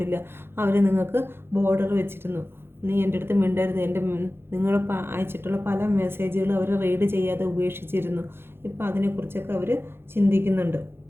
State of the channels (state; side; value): late; left; 0.11 ms